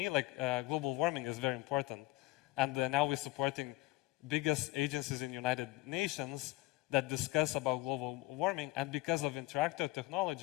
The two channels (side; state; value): right; quieter; 19.8 dB